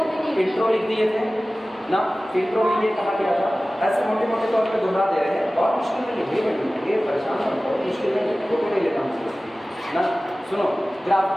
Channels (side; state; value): both; normal; correlation 0.97